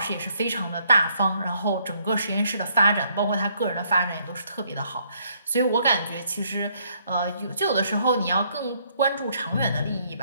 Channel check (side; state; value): both; inverted; correlation -0.69